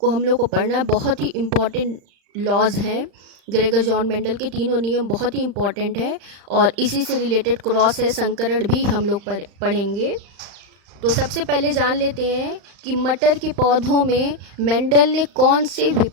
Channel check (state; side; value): late; left; 35 ms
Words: हम लोग को पढ़ना है, बहुत ही इम्पॉर्टेंट लॉज हैं। ग्रेगर जॉन मेंडल के तीनों नियम बहुत ही इम्पॉर्टेंट है और इसी से रिलेटेड क्रॉस है संकरण भी हम लोग पढ़ेंगे। तो सबसे पहले जान लेते हैं कि मटर के पौधों में मेंडल ने कौन से